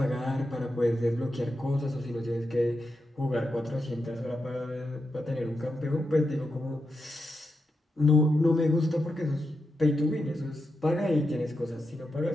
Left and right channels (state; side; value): normal; both; correlation 0.87